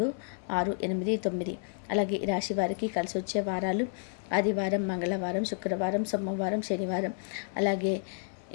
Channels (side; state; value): right; silent; 57 dB below the other